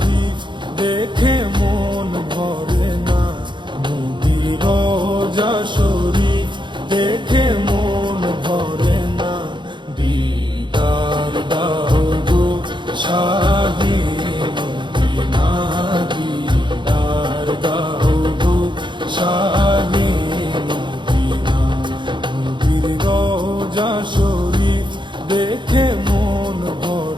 দেখে মন ভরে না, নবীর রওজা শরীফ দেখে মন ভরে না। দিদার দাও গো শাহে মদিনা, দিদার দাও গো শাহে মদিনা। নবীর রওজা শরীফ দেখে মন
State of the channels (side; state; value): left; late; 0.23 ms